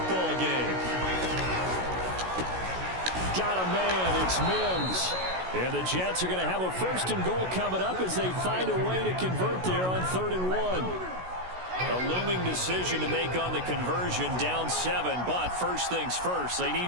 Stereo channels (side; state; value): left; late; 16 ms